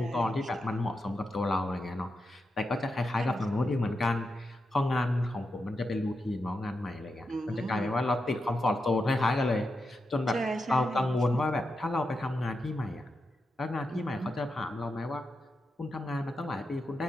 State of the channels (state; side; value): normal; both; correlation 0.87